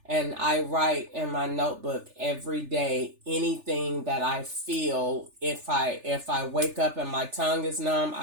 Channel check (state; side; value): late; left; 3.4 ms